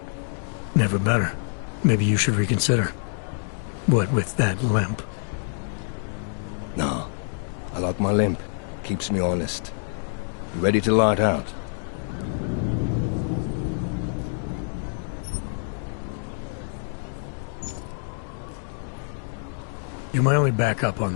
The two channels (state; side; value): silent; right; digital silence